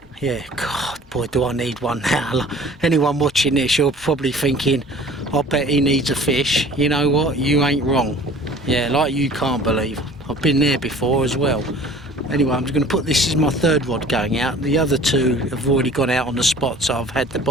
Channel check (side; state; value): both; normal; correlation 0.47